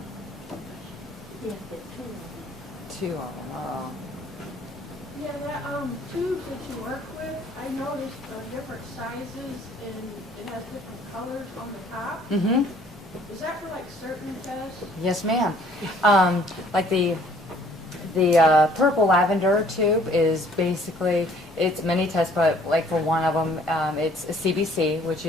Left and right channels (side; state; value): both; normal; correlation 0.58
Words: 2 of them. Oh. Yeah, that tube that you work with, I noticed different sizes and it has different colors on the top. Mm-hmm. Is that for like certain tests? Yes, ma'am. Like the purple lavender tube is basically, it's many tests, but like for one of them, it's a CBC, which